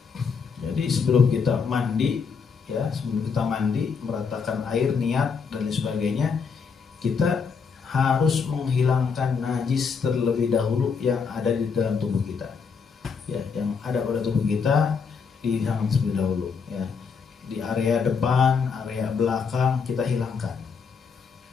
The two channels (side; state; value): right; quieter; 5.7 dB